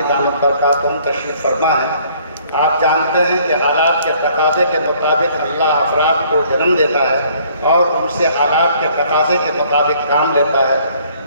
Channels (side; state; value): both; inverted; correlation -0.60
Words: دامت برکاتہم تشریف فرما ہے۔ آپ جانتے ہیں کہ حالات کے تقاضے کے مطابق اللہ افراد کو جنم دیتا ہے اور ان سے حالات کے تقاضے کے مطابق کام لیتا ہے۔